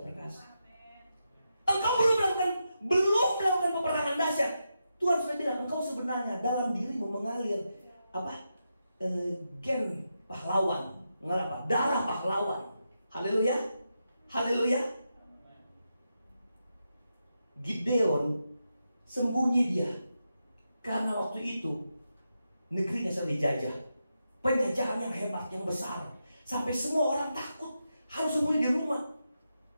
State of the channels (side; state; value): both; inverted; correlation -0.87